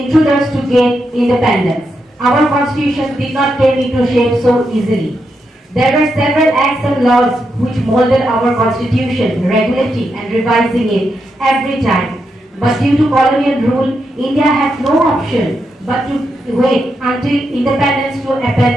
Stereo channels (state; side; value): normal; both; correlation 0.84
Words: to gain independence. Our constitution did not come into shape so easily. There were several acts and laws which molded our constitution, regulating and revising it every time. But due to colonial rule, India had no option but to wait until independence to